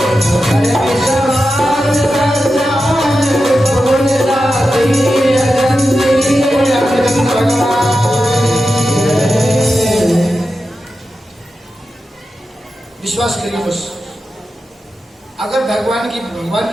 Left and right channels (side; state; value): both; normal; correlation 0.91